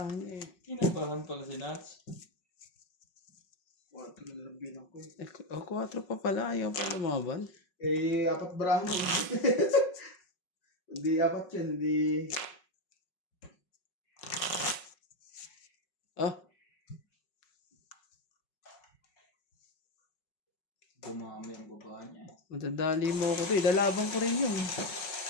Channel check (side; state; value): right; late; 5.5 ms